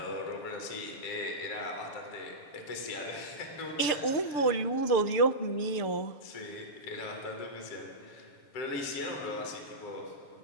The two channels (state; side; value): late; right; 6.7 ms